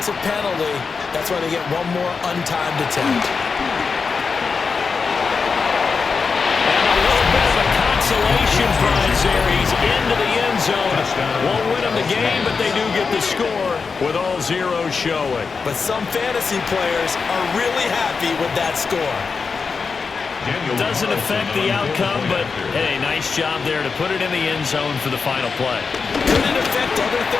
penalty, that's why they get one more untimed attempt. And a little bit of a consolation prize there. He's into the end zone. Won't win them the game, but they do get the score with all zeros showing. But some fantasy players are really happy with that score. Doesn't affect the outcome, but hey, nice job there to put it in the end zone for the final play. Could it affect other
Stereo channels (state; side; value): quieter; right; 5.0 dB